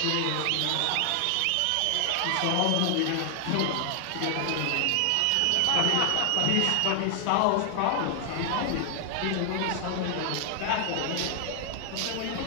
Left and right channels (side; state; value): both; different; correlation 0.00